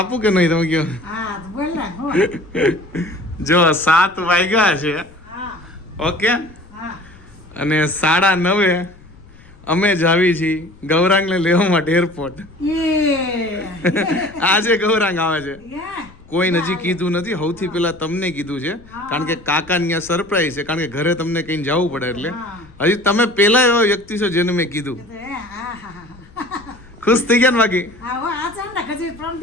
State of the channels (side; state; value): left; noise; rumble, 24 dB below the sound